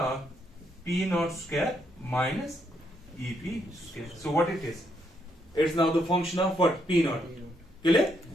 p naught square minus ep square. So what it is? It's now the function of what? P naught. Clear?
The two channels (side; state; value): both; normal; correlation 0.76